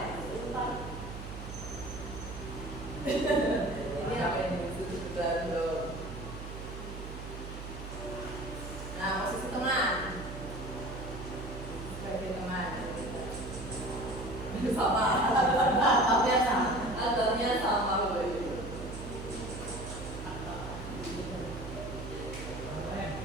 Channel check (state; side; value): noise; right; hum, 9 dB below the sound